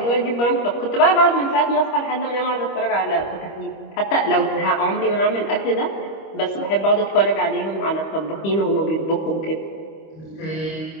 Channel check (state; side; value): late; right; 25 ms